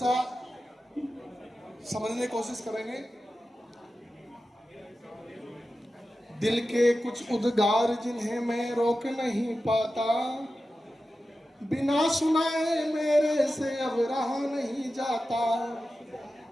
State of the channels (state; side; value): normal; both; correlation 0.93